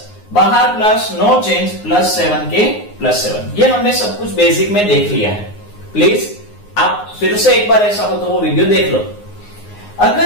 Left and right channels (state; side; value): late; right; 9.6 ms